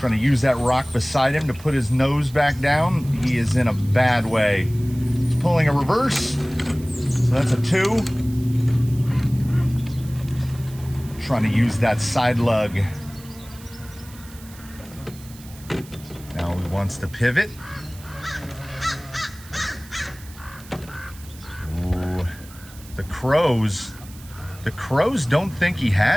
trying to use that rock beside him to put his nose back down. He is in a bad way. He's pulling a reverse. So that's a 2. Trying to use that side lug. Now he wants to pivot. Ooh. The crows don't think he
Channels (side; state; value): right; noise; hiss, 20 dB below the sound